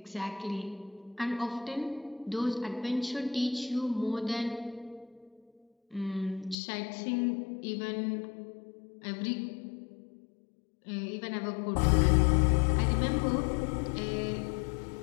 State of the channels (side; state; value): right; drops out; at 6.6 s